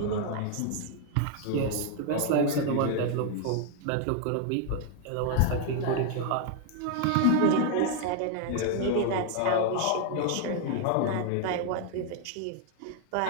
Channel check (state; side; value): different; both; correlation 0.01